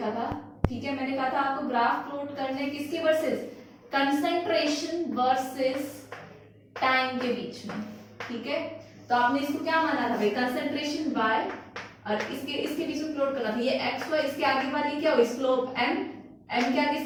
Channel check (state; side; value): identical; both; correlation 1.00